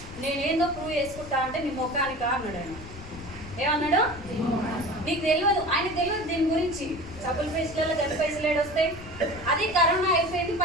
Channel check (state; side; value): noise; left; rumble, 15 dB below the sound